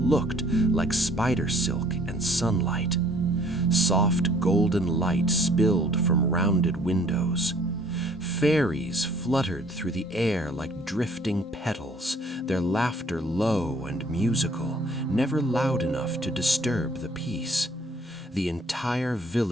looked like spider silk and sunlight. Soft golden light spilled from rounded windows. Fairies fluttered through the air like drifting petals, their laughter low and musical, never loud enough to disturb the peace. The entire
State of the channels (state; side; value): normal; both; correlation 0.58